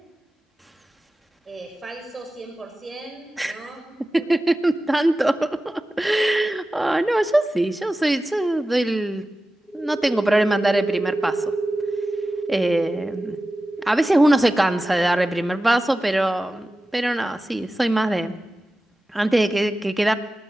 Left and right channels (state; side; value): normal; both; correlation 0.95